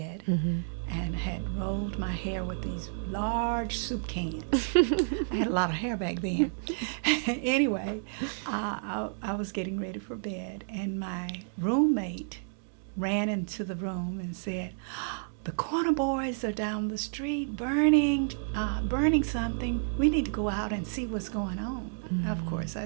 and had rolled my hair with these large soup cans. I had a lot of hair back then. Anyway, I was getting ready for bed, and my roommate ran into the room and said, "The Corner Boys are down the street burning something. We need to go out and see what's going on." Of course, I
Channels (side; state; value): left; silent; digital silence